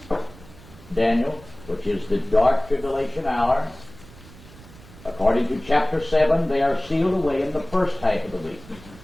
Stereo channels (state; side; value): noise; right; rumble, 20 dB below the sound